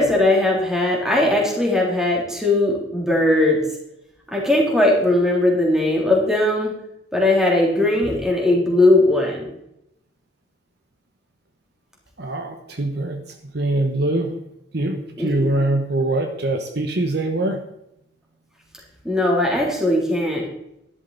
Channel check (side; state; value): both; normal; correlation 0.62